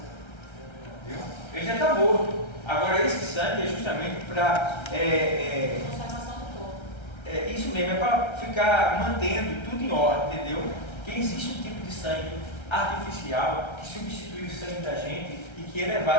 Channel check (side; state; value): right; late; 1.3 ms